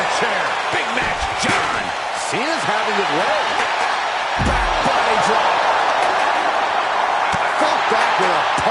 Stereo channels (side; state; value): both; identical; correlation 1.00